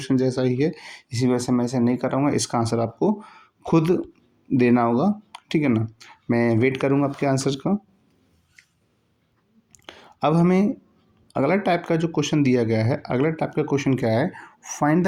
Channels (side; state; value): both; identical; correlation 1.00